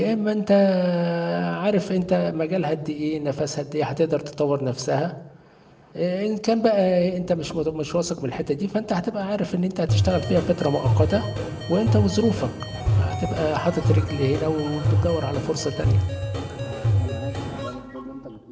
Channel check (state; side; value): identical; both; correlation 1.00